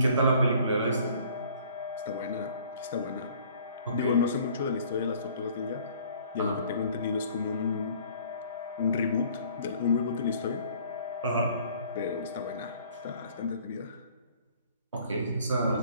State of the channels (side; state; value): both; inverted; correlation -0.55